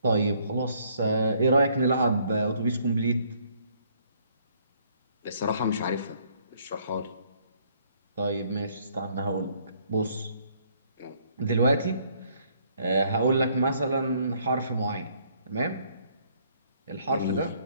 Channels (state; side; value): inverted; both; correlation -0.65